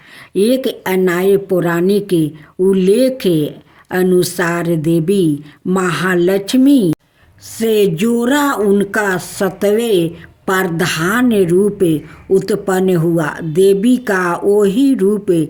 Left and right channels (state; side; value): identical; both; correlation 1.00